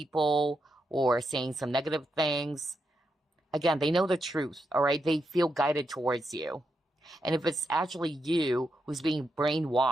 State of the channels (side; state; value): both; normal; correlation 0.84